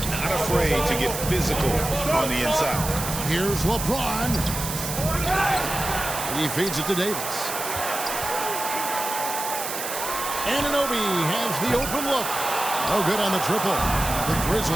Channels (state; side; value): noise; right; hiss, 5 dB below the sound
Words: Not afraid to get physical on the inside. Here's LeBron. He feeds it to Davis. Anunoby has the open look. No good on the triple. The